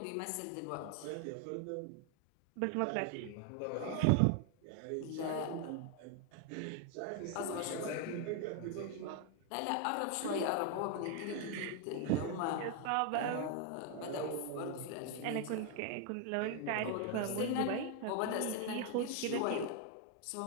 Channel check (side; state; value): both; different; correlation 0.01